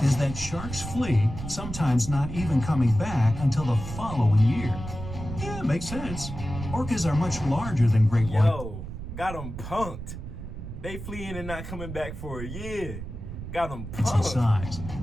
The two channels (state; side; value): noise; right; rumble, 9 dB below the sound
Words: is that sharks flee, sometimes not even coming back until the following year. Yeah, makes sense. Orcas are much larger than great white. Yo, got them punked. They fleeing and not coming back for a year. Got them punked. Size.